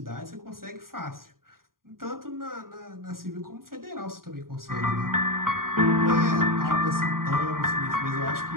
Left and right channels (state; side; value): late; left; 0.91 ms